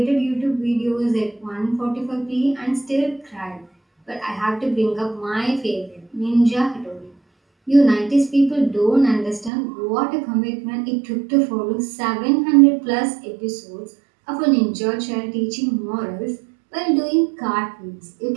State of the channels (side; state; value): left; drops out; at 9.5 s